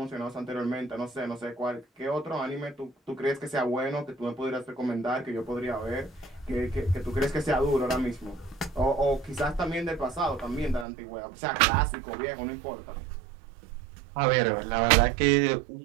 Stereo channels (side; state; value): left; drops out; at 10.9 s